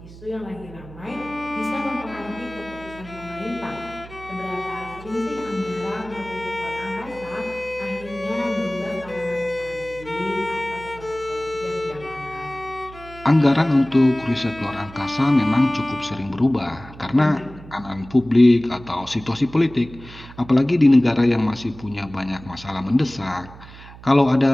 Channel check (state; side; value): noise; right; hum, 18 dB below the sound